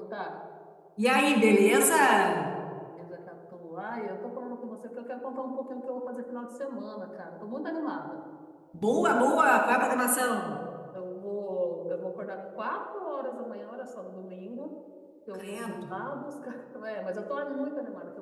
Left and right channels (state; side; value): identical; both; correlation 1.00